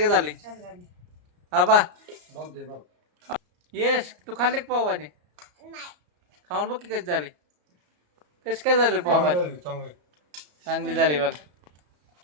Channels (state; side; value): late; left; 34 ms